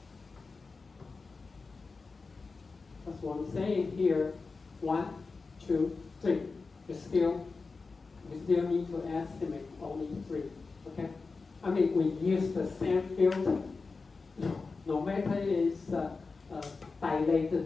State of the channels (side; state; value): right; quieter; 4.2 dB